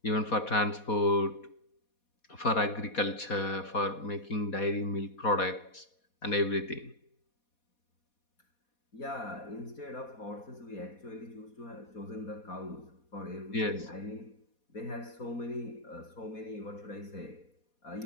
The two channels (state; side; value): late; right; 4.2 ms